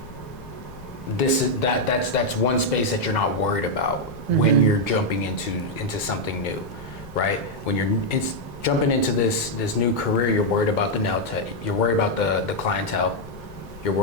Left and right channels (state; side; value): noise; left; rumble, 19 dB below the sound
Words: That's one space that you're not worried about when you're jumping into something new, right? When you're jumping into this new career, you're worried about the nail tech. You're worried about the clientele. You're